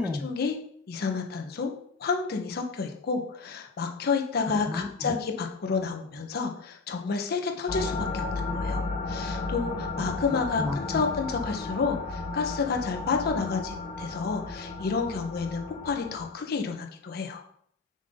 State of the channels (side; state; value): right; quieter; 4.2 dB